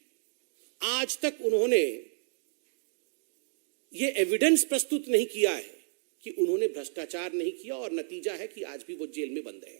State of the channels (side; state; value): left; silent; 57 dB below the other